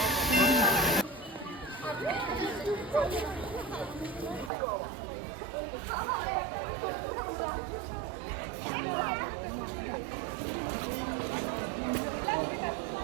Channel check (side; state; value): left; drops out; at 4.5 s